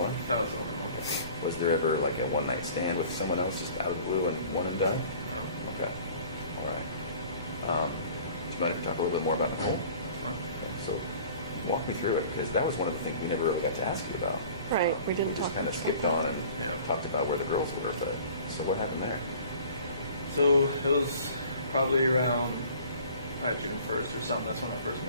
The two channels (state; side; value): inverted; both; correlation -0.47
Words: That was the only one. Was there ever like a one night stand with someone else just out of the blue and one and done? No. Okay. All right. Do you mind if we talk a little bit more about Nicole? Okay, so walk me through it, because that was one of the things we never really got to ask you about. Right, we didn't just talk kind of about skipped that. on and talked about where the girls were, but so what happened there? So it was probably around June 1st or something. That's when I first